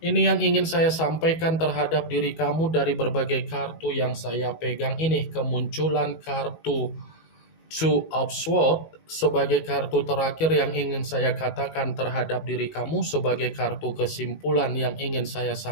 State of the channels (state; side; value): late; right; 19 ms